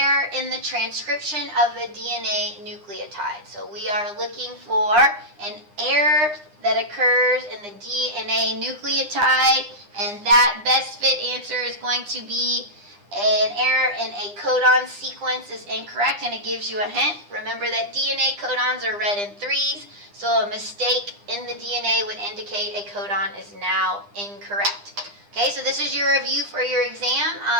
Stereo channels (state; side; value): late; left; 9.8 ms